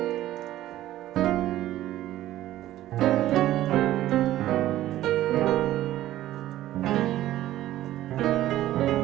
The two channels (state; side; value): quieter; left; 14.1 dB